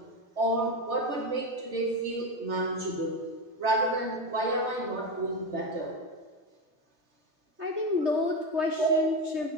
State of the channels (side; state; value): left; late; 3.3 ms